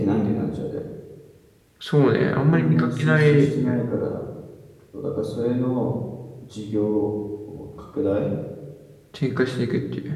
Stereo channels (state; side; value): identical; both; correlation 1.00